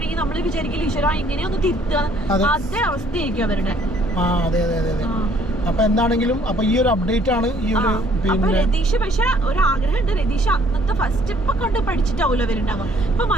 നമ്മള് വിചാരിക്കില്ല ഈശ്വര ഇങ്ങനെയൊന്ന് തിരുത്തുക. അതേ അവസ്ഥയായിരിക്കും അവരുടെ. അതെ അപ്പൊ എന്താണെങ്കിലും അപ്പൊ ഈ ഒരു അപ്ഡേറ്റ് ആണ് ഈ ഒരു. പിന്നെ രതീഷ് പക്ഷെ ഒരു ആഗ്രഹമുണ്ട്. രതീഷ് അന്നത്തെ ഫസ്റ്റ് ഇപ്പൊ കണ്ട് പഠിച്ചിട്ടാവൂലോ അവരുണ്ടാവും. ഇപ്പൊ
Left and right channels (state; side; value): normal; both; correlation 0.62